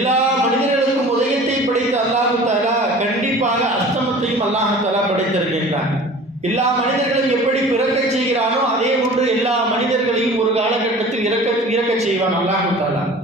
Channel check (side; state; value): both; normal; correlation 0.43